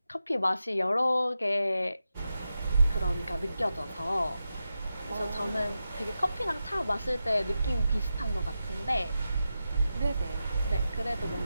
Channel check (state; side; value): inverted; both; correlation -0.90